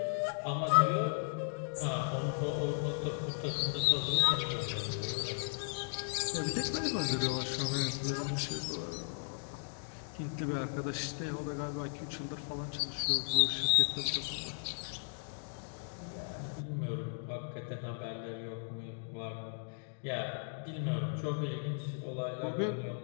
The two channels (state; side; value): silent; right; digital silence